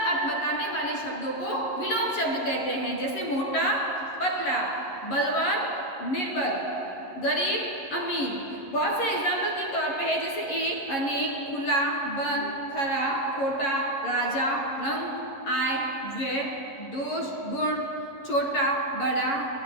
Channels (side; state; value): right; late; 11 ms